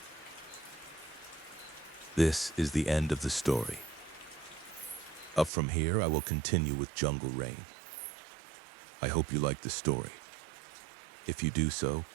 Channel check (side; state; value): left; drops out; at 5.5 s